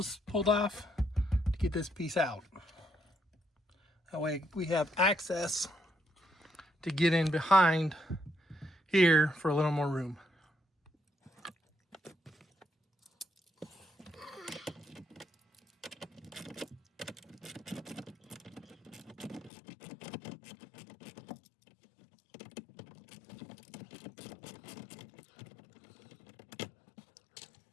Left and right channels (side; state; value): right; drops out; at 19.5 s